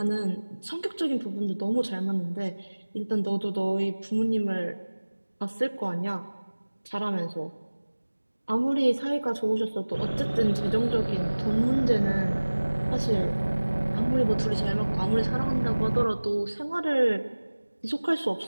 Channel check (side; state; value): both; inverted; correlation -1.00